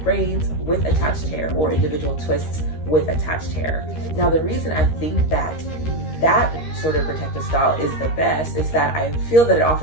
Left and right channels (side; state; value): right; late; 13 ms